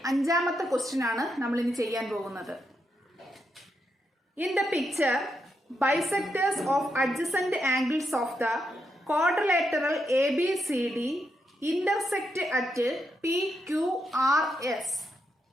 5ാമത്തെ ക്വസ്റ്റ്യൻ ആണ് നമ്മൾ ഇനി ചെയ്യാൻ പോകുന്നത്. In the picture, bisectors of adjacent angles of the quadrilateral ABCD intersect at PQRS.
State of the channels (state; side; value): normal; both; correlation 0.82